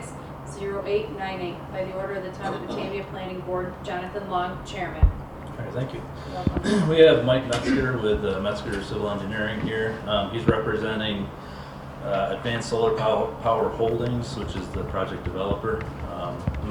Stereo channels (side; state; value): both; identical; correlation 1.00